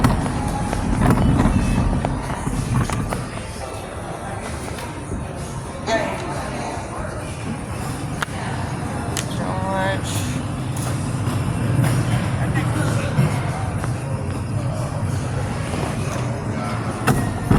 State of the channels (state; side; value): identical; both; correlation 1.00